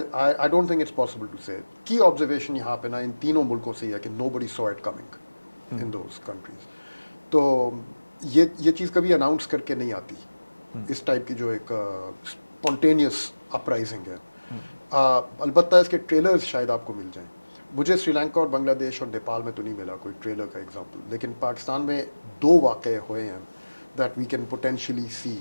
don't think it's possible to say. کی آبزرویشن یہاں پہ نا ان تینوں ملکوں سے یہ ہے کہ nobody saw it coming in those countries. تو یہ چیز کبھی اناؤنس کر کے نہیں آتی, اس ٹائپ کی جو ایک स्पॉन्टेनियस अपराइजिंग है। अलबत्ता इसके ट्रेलर्स शायद आपको मिल जाएं। मुझे श्रीलंका और बांग्लादेश और नेपाल में तो नहीं मिला कोई ट्रेलर का एग्जांपल, लेकिन पाकिस्तान में 2 वाक़े हुए हैं that we can potentially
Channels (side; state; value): both; inverted; correlation -1.00